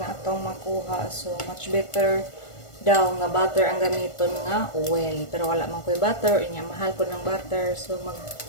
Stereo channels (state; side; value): late; right; 1.5 ms